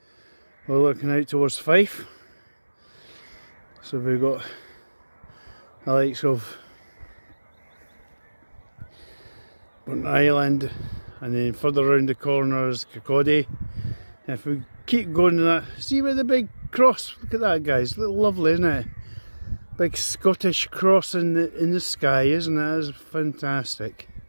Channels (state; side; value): inverted; both; correlation -1.00